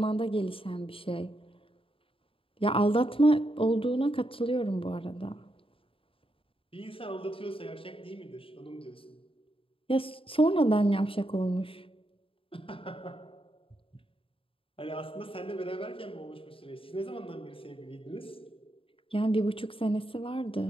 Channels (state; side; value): late; right; 0.26 ms